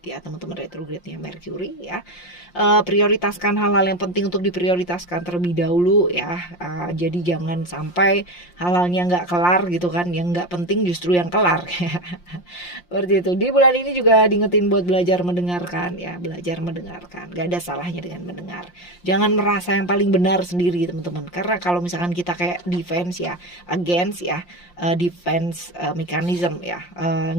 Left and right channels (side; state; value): right; late; 5.7 ms